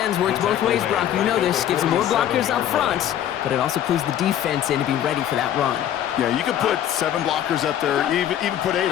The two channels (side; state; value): right; quieter; 10.9 dB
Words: works both ways, Brock. You know this. Gives them more blockers up front, but it also clues the defense in to be ready for that run. Yeah, you could put 7 blockers up there, even put 8,